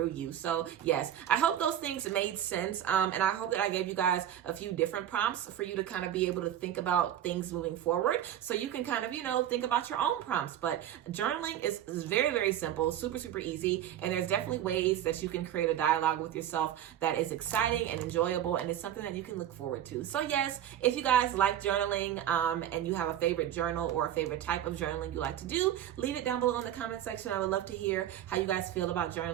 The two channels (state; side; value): quieter; left; 11.1 dB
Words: you. So yes, I hope those things made sense, and I hope that I gave you guys a few different prompts for you to kind of be able to think about things moving forward, so you can kind of, you know, think about your own prompts. But journaling is very, very simple, super, super easy, and there's definitely ways that you can create a dialogue with yourself that is exciting and enjoyable, and it's something that you can look forward to. So yes, if you guys like journaling and you have a favorite journal or a favorite type of journaling you like to do, leave it down below in the comment section. I would love to hear how you guys feel about